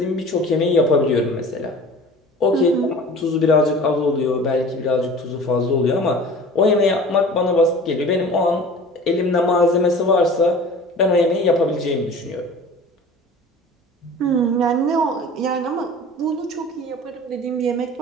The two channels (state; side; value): normal; both; correlation 0.41